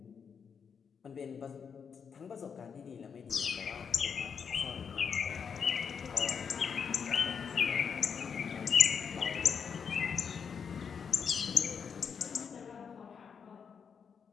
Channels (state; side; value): quieter; right; 6.6 dB